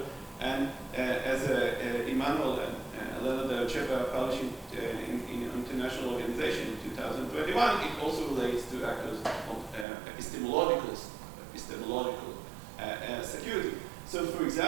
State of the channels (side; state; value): left; drops out; at 9.9 s